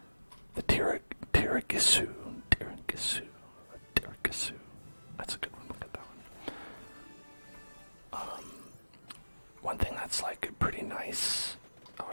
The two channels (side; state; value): both; inverted; correlation -1.00